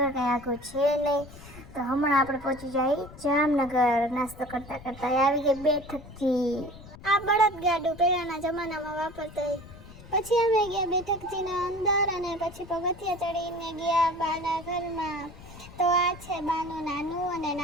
કંઈ આખું છે નહીં, તો હમણાં આપણે પહોંચી જાય જામનગર. નાસ્તો કરતા કરતા આવી ગઈ બેઠકજી. આ બળદ ગાડું પહેલાના જમાનામાં વાપરતા. પછી અમે ગયા બેઠકજીના અંદર અને પછી પગથિયા ચડીને ગયા બાના ઘરમાં. તો આ છે બાનું નાનું અને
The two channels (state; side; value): noise; left; rumble, 18 dB below the sound